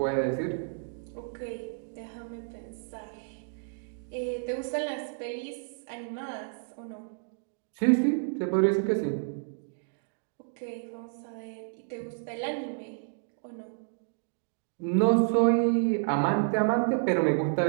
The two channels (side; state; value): left; silent; digital silence